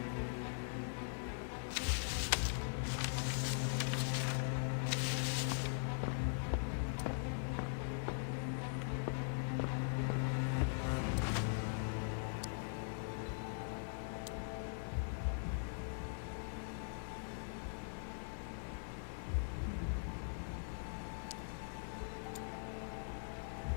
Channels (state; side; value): silent; right; digital silence